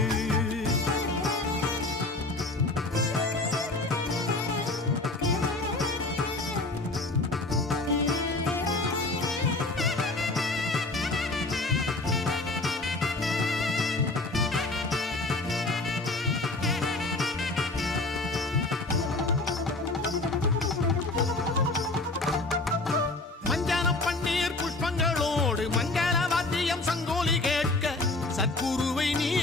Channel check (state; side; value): quieter; right; 3.0 dB